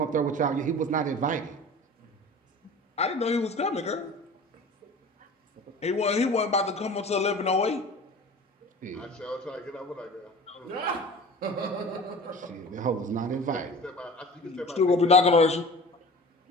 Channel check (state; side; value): normal; both; correlation 0.39